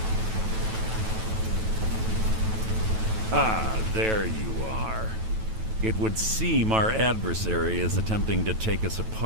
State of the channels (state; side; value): late; left; 9.2 ms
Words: Ah, there you are. It would seem our adversary is attempting to take us